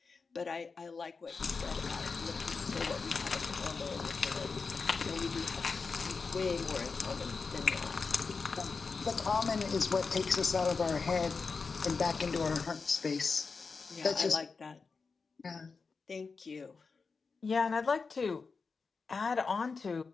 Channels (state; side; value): quieter; right; 4.7 dB